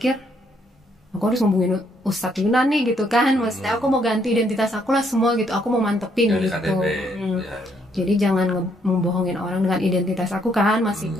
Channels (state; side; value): normal; both; correlation 0.71